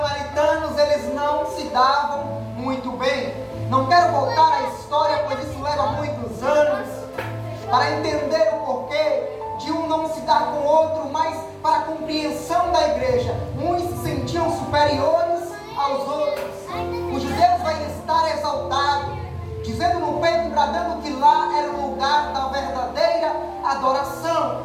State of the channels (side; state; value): both; identical; correlation 1.00